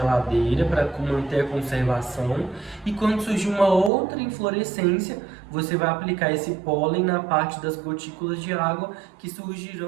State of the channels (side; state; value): left; drops out; at 3.9 s